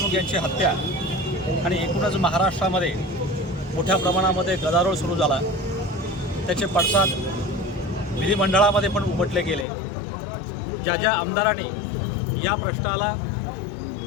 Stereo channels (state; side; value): drops out; right; at 9.7 s